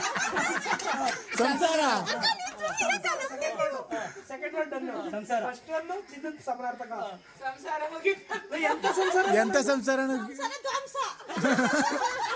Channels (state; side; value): identical; both; correlation 1.00